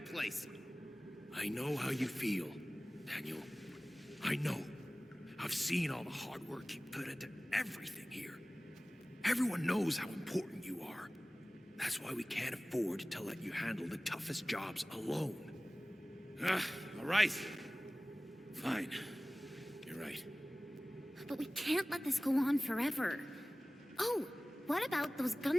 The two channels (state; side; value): normal; both; correlation 0.98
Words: I know how you feel, Daniel. I know. I've seen all the hard work you put into everything here. Everyone knows how important you are. That's why we can't afford to let you handle the toughest jobs alone. All right. Fine. You're right. But we can't let this go on forever. Oh, what about those